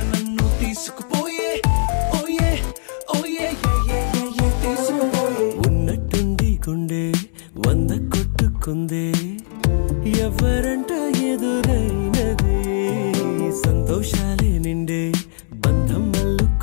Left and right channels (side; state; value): right; silent; 66 dB below the other